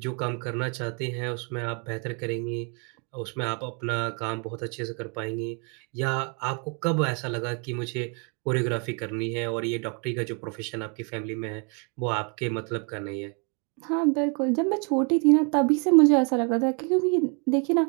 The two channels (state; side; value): quieter; left; 36.7 dB